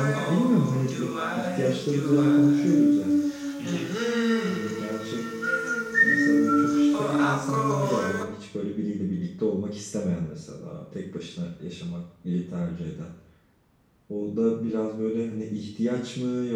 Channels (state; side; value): identical; both; correlation 1.00